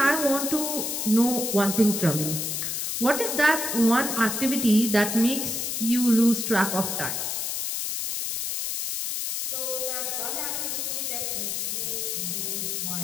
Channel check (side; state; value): left; noise; hiss, 2 dB below the sound